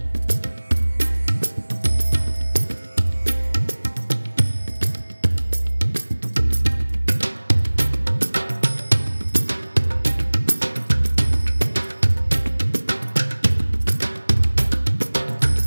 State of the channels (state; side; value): inverted; both; correlation -1.00